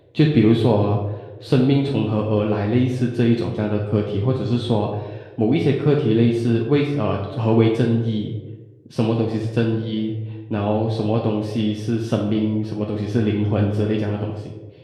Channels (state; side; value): identical; both; correlation 1.00